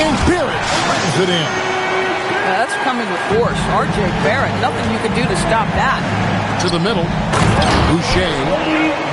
Barrett slams it in. That's coming with force. R.J. Barrett, nothing you can do to stop that. To the middle. Boucher.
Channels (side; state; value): both; identical; correlation 1.00